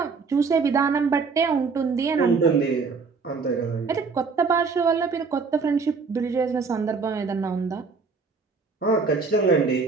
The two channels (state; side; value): quieter; left; 4.8 dB